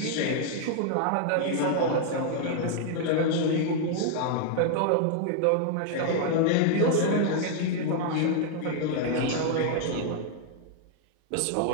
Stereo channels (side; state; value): both; different; correlation 0.00